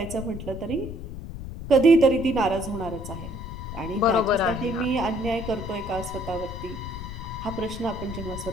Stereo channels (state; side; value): noise; left; rumble, 9 dB below the sound